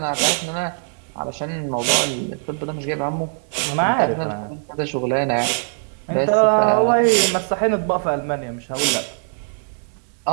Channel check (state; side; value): silent; left; 65 dB below the other